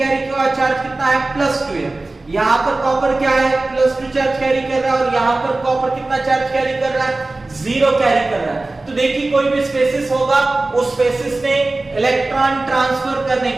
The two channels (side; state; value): left; quieter; 3.1 dB